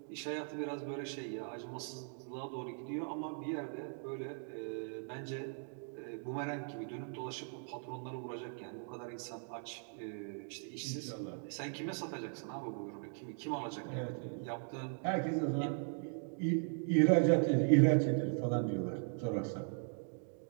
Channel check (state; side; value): silent; left; 52 dB below the other